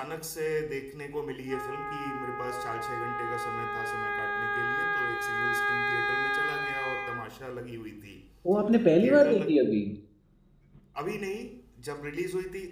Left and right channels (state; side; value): identical; both; correlation 1.00